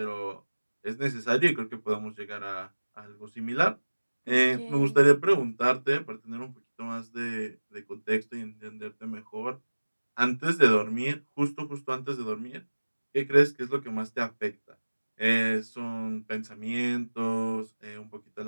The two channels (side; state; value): both; inverted; correlation -1.00